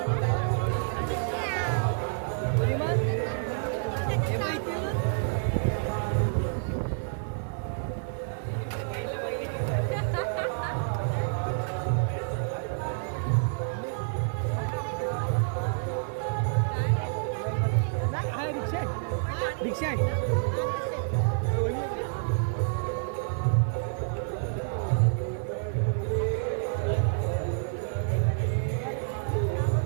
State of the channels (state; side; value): silent; left; digital silence